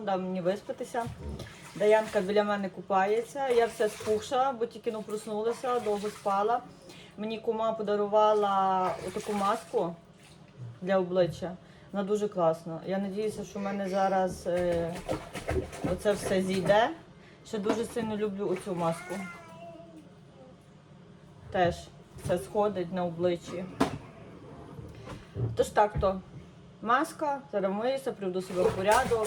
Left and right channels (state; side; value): identical; both; correlation 1.00